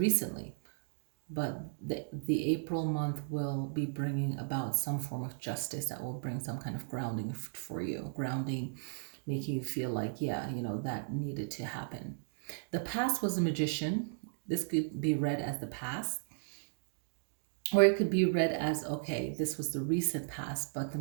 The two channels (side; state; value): left; silent; digital silence